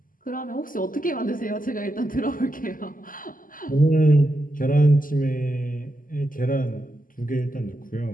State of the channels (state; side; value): late; right; 0.40 ms